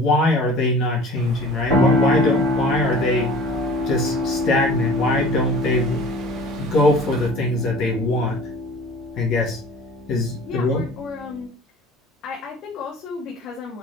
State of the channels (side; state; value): both; normal; correlation 0.44